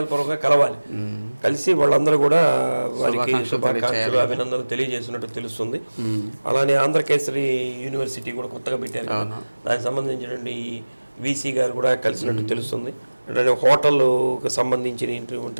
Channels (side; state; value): both; inverted; correlation -1.00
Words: కలవాలి. కలిసి వాళ్ళందరూ కూడా వారికి శుభాకాంక్షలు అభినందనలు తెలియజేసినట్టు తెలుస్తుంది. అలానే ఆంధ్రకేసరి యూనివర్సిటీ కూడా కొత్తగా పెట్టారు కదా, దానికి సంబంధించినటువంటి వీసీ గారు కూడా కలిసినట్టు తెలుస్తుంది. అంటే హోటల్కి